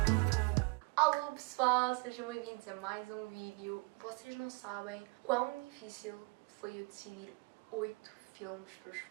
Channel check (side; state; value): left; quieter; 29.6 dB